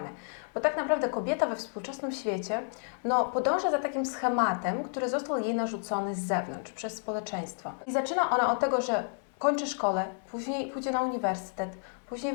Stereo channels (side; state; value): right; silent; 57 dB below the other